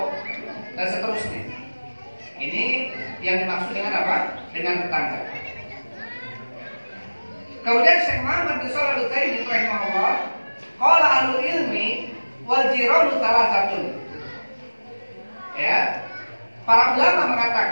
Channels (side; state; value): both; inverted; correlation -1.00